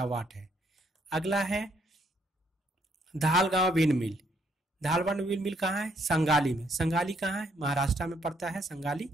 है। अगला है धालगांव विंड मिल। धालवाड़ विंड मिल कहाँ है? संगाली में। संगाली कहाँ है? महाराष्ट्र में पड़ता है संगाली।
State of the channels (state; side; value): normal; both; correlation 0.70